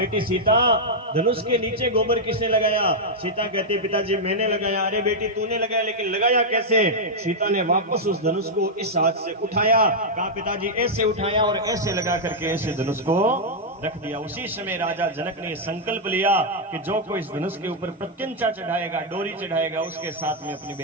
सीता, धनुष के नीचे गोबर किसने लगाया? सीता कहती, पिताजी मैंने लगाया। अरे बेटी तूने लगाया, लेकिन लगाया कैसे? सीता ने वापस उस धनुष को इस हाथ से उठाया, कहा पिताजी ऐसे उठाया और ऐसे लगा करके ऐसे धनुष को रख दिया। उसी समय राजा जनक ने संकल्प लिया कि जो कोई इस धनुष के ऊपर प्रत्यंचा चढ़ाएगा, डोरी चढ़ाएगा, उसके साथ में अपनी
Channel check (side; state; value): both; normal; correlation -0.04